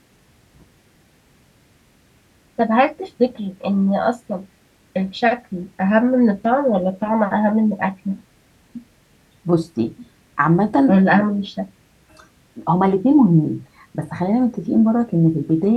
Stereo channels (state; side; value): identical; both; correlation 1.00